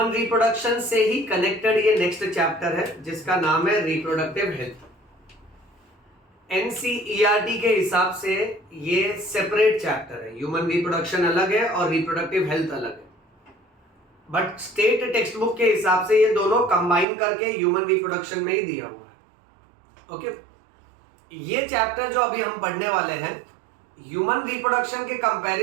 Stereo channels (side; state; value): left; drops out; at 17.1 s